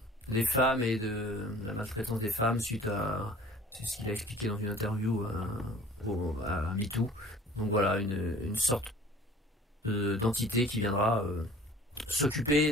femmes et de la maltraitance des femmes suite à... C'est ce qu'il a expliqué dans une interview à MeToo. Donc voilà, une sorte d'entité qui viendra s'occuper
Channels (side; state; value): both; normal; correlation 0.48